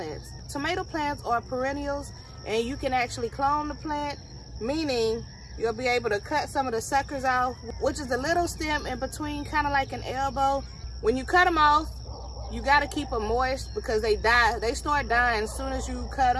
Tomato plants are perennials, and you can actually clone the plant, meaning you'll be able to cut some of the suckers off, which is the little stem in between, kind of like an elbow. When you cut them off, you got to keep them moist because they die. They start dying as soon as you cut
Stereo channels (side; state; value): both; identical; correlation 1.00